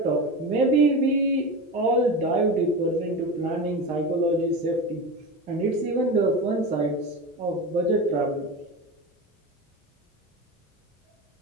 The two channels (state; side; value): normal; both; correlation 0.25